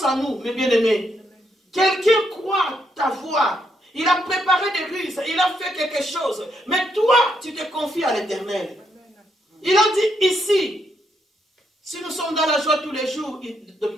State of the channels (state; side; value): normal; both; correlation 0.77